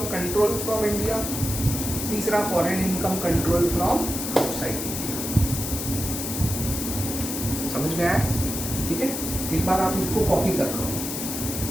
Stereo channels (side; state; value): left; noise; hiss, 4 dB below the sound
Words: control from India, तीसरा foreign income control from outside India. समझ में आया? ठीक है, एक बार आप इसको कॉपी कर लो,